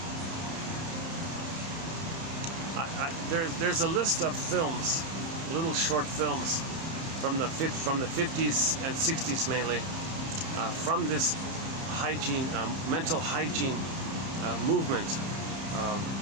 There's a list of films, little short films from the 50s and 60s mainly, from this hygiene, mental hygiene movement.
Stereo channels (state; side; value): late; left; 30 ms